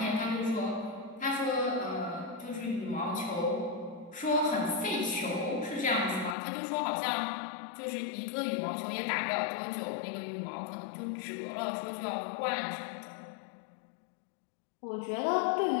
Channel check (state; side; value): drops out; right; at 6.4 s